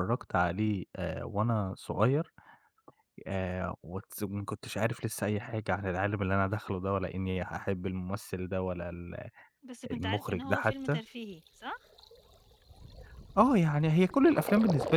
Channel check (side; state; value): both; identical; correlation 1.00